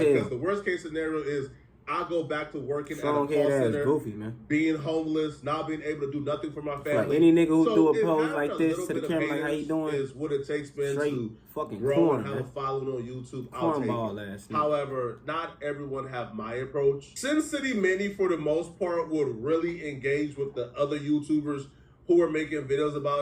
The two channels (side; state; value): both; identical; correlation 1.00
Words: hell. Because the worst case scenario is I go back to working strong at a call center, goofy, man. being homeless, not being able to do nothing for my family. Like any nigga who do a pose like this to the camera, like how you doing, is what it takes, man, to fucking grow and have a following on YouTube. I'll take it. However, not everyone have my approach. Sin City Manny, for the most part, would really engage with the other YouTubers who are making videos